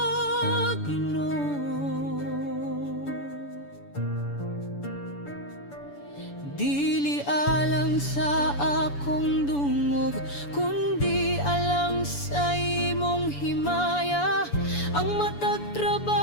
Ginoo. Dili alang sa akong dungog, kundi alang sa imong himaya, ang matag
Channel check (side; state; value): right; late; 7.0 ms